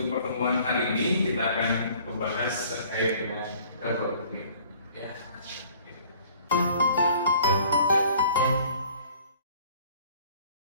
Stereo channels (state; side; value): inverted; both; correlation -0.54